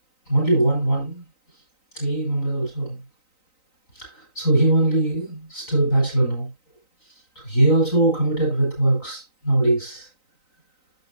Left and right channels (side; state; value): right; late; 3.9 ms